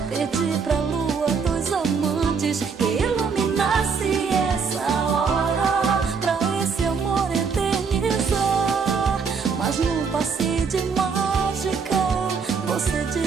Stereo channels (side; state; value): left; quieter; 5.6 dB